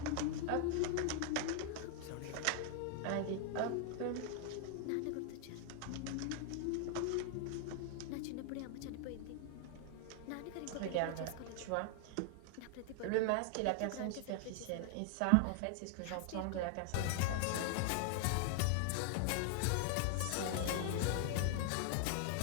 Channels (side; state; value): both; different; correlation 0.00